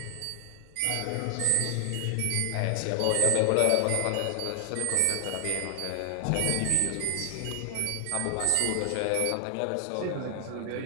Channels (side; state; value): both; different; correlation 0.00